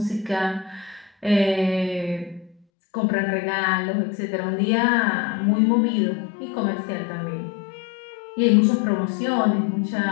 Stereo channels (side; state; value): right; drops out; at 2.6 s